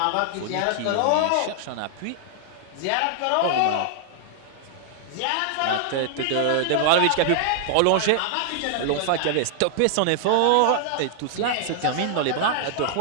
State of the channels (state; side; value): different; both; correlation 0.00